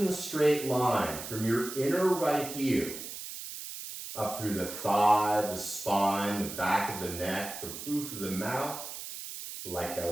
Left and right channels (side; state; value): right; noise; hiss, 9 dB below the sound